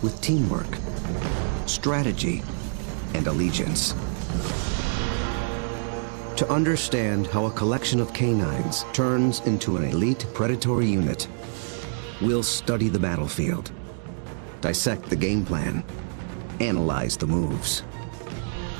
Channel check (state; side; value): silent; left; 61 dB below the other